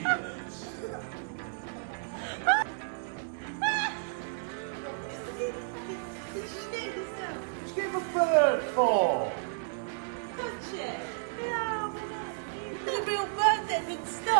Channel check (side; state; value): left; silent; 56 dB below the other